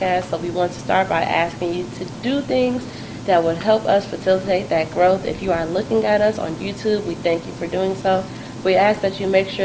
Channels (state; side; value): identical; both; correlation 1.00